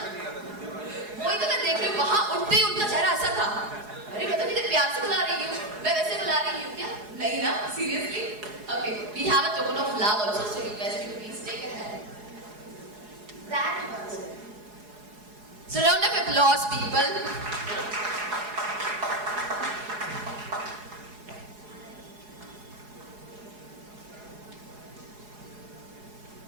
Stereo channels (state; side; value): late; left; 4.8 ms